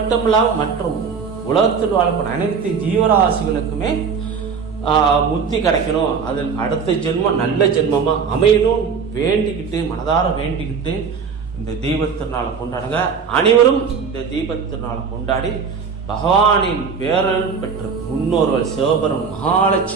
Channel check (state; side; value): quieter; left; 5.9 dB